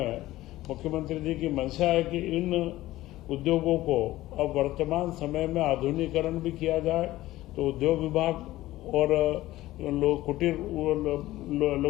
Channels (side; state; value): right; quieter; 16.4 dB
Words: मुख्यमंत्री जी की मंशा है कि इन उद्योगों को अब वर्तमान समय में आधुनिकीकरण भी किया जाए। तो उद्योग विभाग और कुटीर